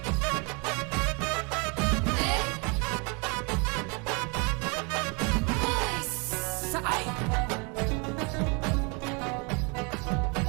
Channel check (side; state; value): left; quieter; 32.1 dB